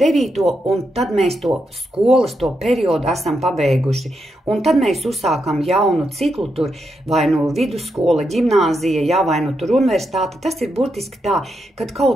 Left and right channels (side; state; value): both; normal; correlation 0.83